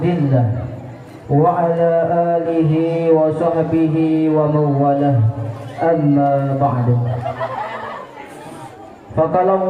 wa ala alihi wa sahbihi wa mawalah. Amma ba'du. Faqala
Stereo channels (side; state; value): both; identical; correlation 1.00